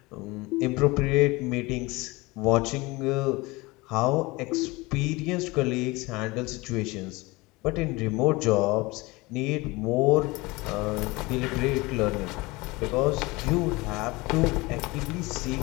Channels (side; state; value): right; quieter; 23.1 dB